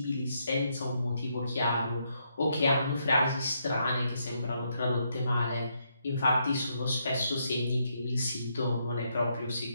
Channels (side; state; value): both; inverted; correlation -0.77